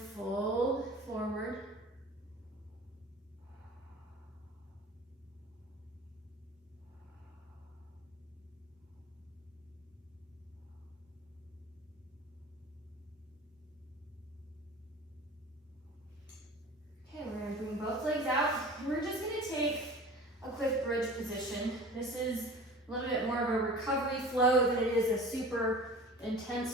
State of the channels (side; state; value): both; normal; correlation 0.40